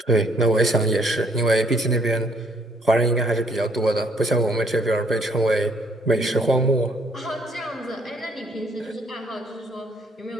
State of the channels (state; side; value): normal; both; correlation 0.65